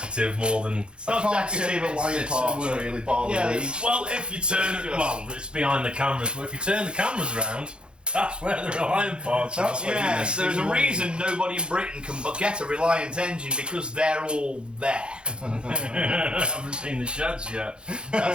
more than... It's not decorative, Reliant parts really bother me. Well, if you turn it... Well, it's behind the cameras, but if you turn the cameers around, that's where the Reliant parts are. Yes, there's a reason nobody in Britain can get a Reliant engine, because they're all there. I haven't seen the sheds yet.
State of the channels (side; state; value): left; late; 0.053 ms